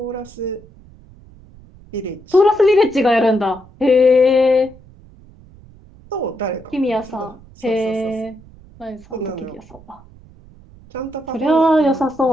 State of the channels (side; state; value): right; noise; rumble, 23 dB below the sound